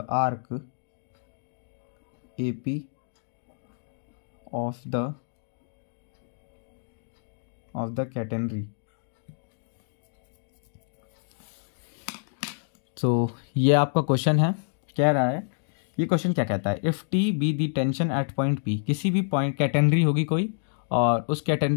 arc AP of the catenary। तो ये आपका question है, कह रहा है, ये क्वेश्चन क्या कहता है, if T be the tension at point P, किसी भी पॉइंट कैटेनरी होगी कोई और उस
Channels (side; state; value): right; silent; digital silence